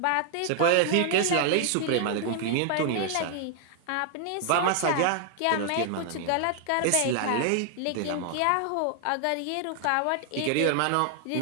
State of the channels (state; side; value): different; both; correlation 0.00